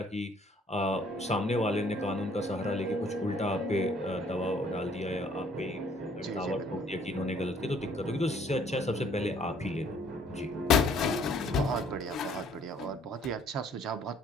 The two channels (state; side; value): normal; both; correlation 0.60